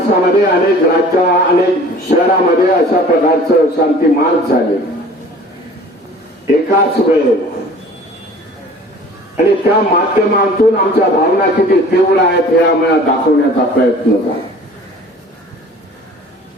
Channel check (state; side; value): normal; both; correlation 0.47